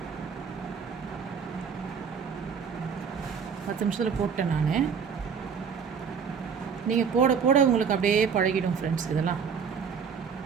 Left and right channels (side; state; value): left; quieter; 6.5 dB